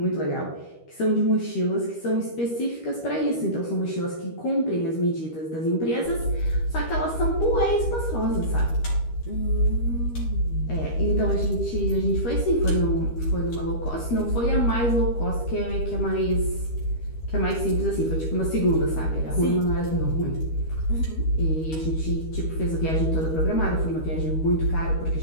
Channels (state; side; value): late; right; 13 ms